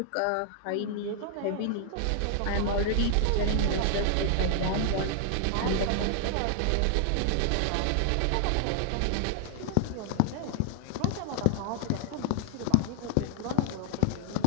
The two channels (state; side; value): different; both; correlation 0.00